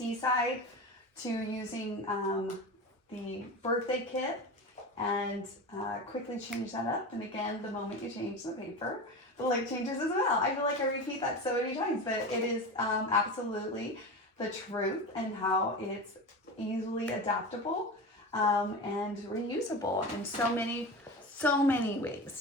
to using the birthday kit and quickly changed that up. And again, the moment you change the paper, the look changes as well. I feel like I repeat that so many times, but it is absolutely the truth and how it's easily adaptable and reusable in so many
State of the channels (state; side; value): normal; both; correlation 0.26